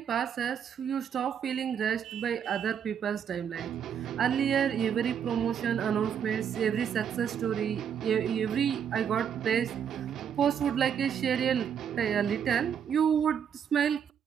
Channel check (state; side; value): quieter; left; 8.1 dB